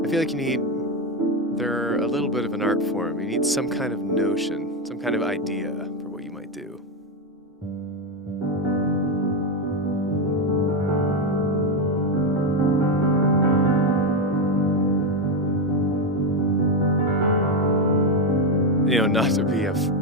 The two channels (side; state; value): both; normal; correlation 0.09